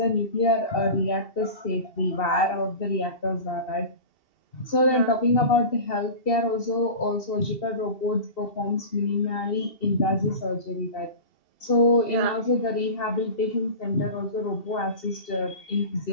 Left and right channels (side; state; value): right; late; 2.7 ms